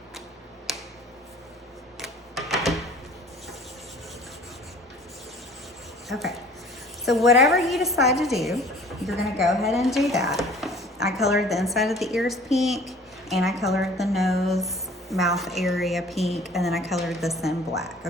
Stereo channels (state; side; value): normal; both; correlation 0.49